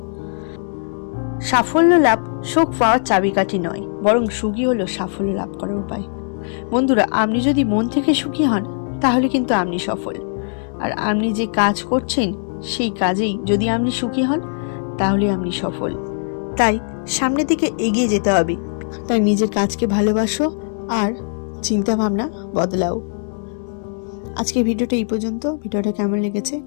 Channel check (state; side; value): silent; right; 65 dB below the other